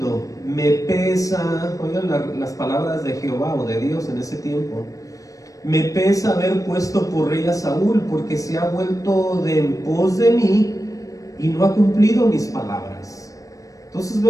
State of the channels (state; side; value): late; right; 0.16 ms